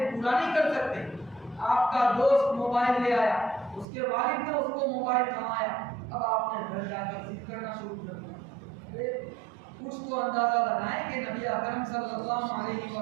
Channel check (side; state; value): left; drops out; at 3.9 s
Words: پورا نہیں کر سکتے۔ آپ کا دوست موبائل لے آیا، اس کے والد نے اس کو موبائل تھمایا، اب آپ نے گھر جا کر ضد کرنا شروع کر دیا۔ کچھ تو اندازہ لگائیں کہ نبی اکرم صلی اللہ علیہ